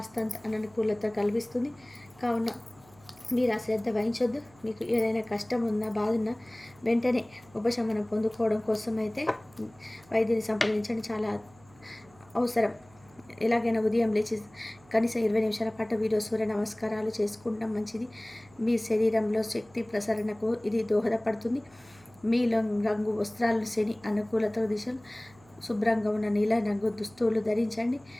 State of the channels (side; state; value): right; noise; hum, 27 dB below the sound